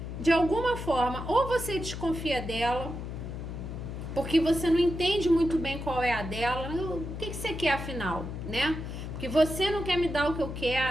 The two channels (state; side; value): noise; left; hum, 7 dB below the sound